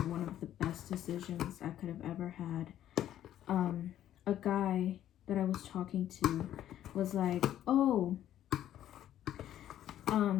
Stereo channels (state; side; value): quieter; right; 11.7 dB